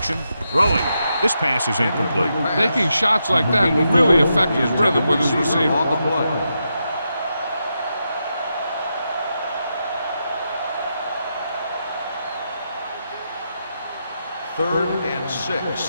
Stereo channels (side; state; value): both; inverted; correlation -0.84